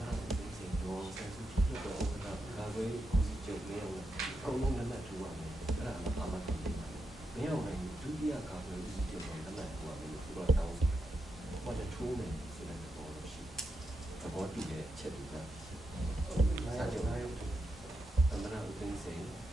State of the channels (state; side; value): normal; both; correlation 0.86